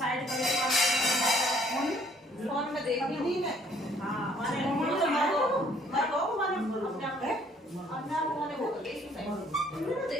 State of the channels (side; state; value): both; normal; correlation 0.61